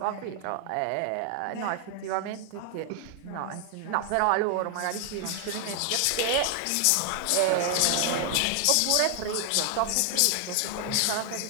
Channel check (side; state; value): both; different; correlation 0.00